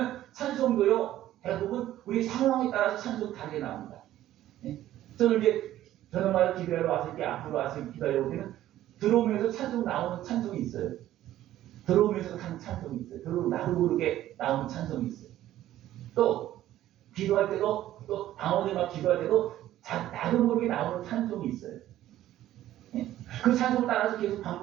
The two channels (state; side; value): quieter; left; 13.5 dB